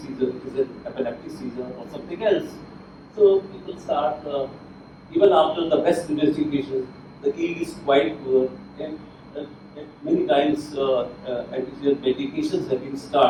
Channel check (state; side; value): identical; both; correlation 1.00